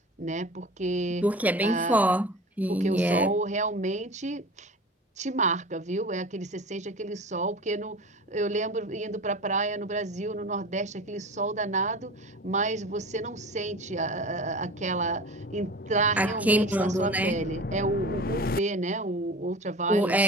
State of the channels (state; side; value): normal; both; correlation 0.36